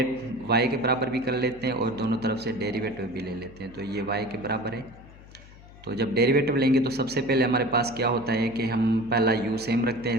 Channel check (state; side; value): noise; left; hum, 20 dB below the sound